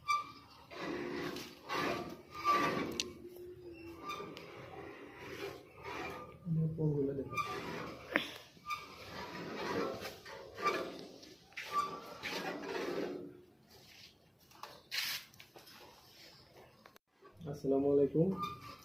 পরগুলো দেখো। আসসালামু আলাইকুম।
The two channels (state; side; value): identical; both; correlation 1.00